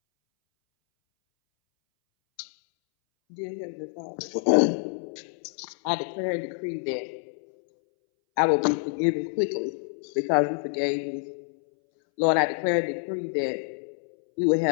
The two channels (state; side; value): silent; right; 60 dB below the other